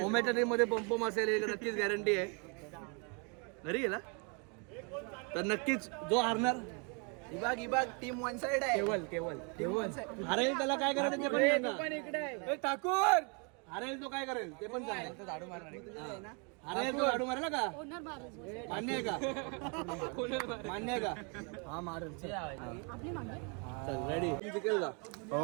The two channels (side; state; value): left; quieter; 35.2 dB